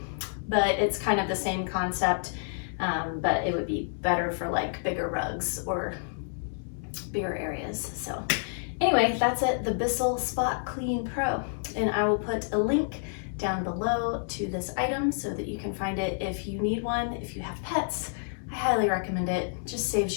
but it's kind of the same concept, but it would be better for like bigger rugs or bigger areas. So anyway, that's it, the Bissell Spot Clean Pro, and I will put a link down below to this item so that you can find it if you need one. If you have pets, I highly recommend it. Just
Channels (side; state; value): right; silent; 59 dB below the other